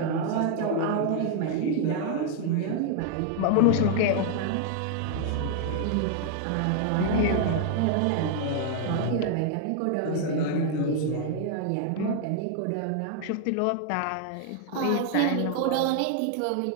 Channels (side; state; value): both; different; correlation 0.00